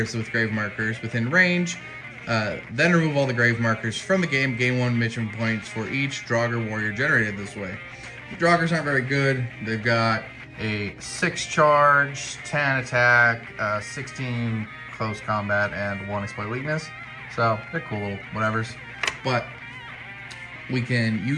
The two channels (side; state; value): both; identical; correlation 1.00